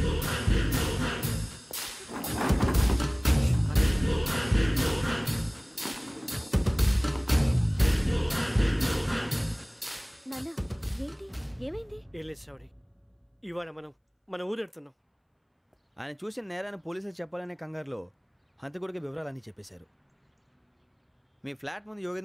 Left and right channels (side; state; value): both; identical; correlation 1.00